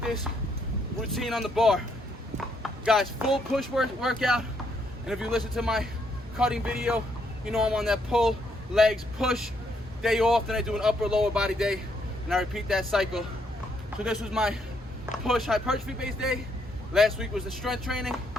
this routine on the bar. Guys, full push workout. And if you listen to my cutting video, you know I'm on that pull, legs, push, day off, then I do an upper lower body day, and I repeat that cycle. So this was my push hypertrophy based day. Last week was the strength training.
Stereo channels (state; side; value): normal; both; correlation 0.73